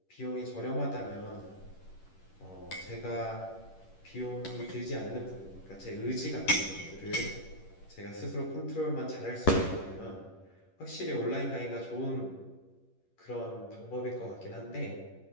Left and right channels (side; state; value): right; late; 11 ms